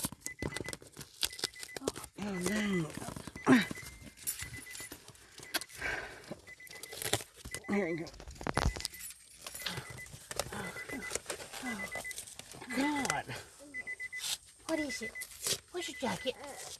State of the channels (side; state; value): both; identical; correlation 1.00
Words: no. Here you go. God. What is it? Where's your jacket?